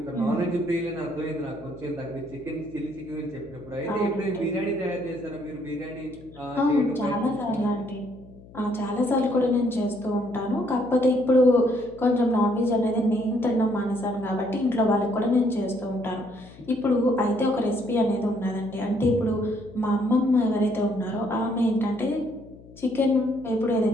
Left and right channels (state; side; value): noise; left; hum, 21 dB below the sound